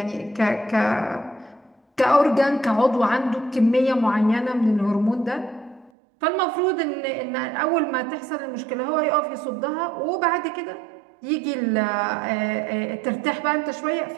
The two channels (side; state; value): left; drops out; at 5.9 s